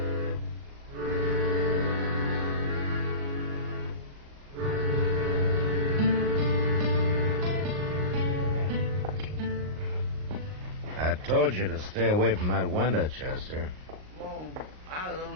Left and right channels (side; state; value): left; late; 38 ms